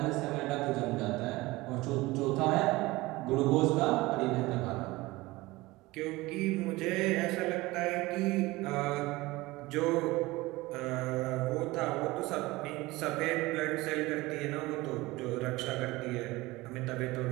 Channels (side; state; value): left; quieter; 20.5 dB